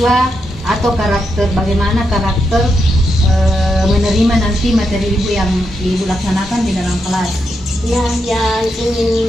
atau bagaimana karakter menerima nanti materi Ibu yang Ibu laksanakan di dalam kelas. Ya, yang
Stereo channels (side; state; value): both; normal; correlation 0.83